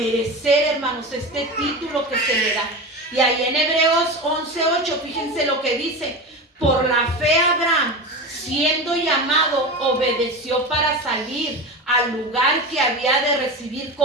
hermanos, este título que se le da. Y ahí en Hebreos 11:8, fíjense lo que dice: por la fe Abraham, siendo llamado, obedeció para salir al lugar que había de recibir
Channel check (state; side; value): normal; both; correlation 0.25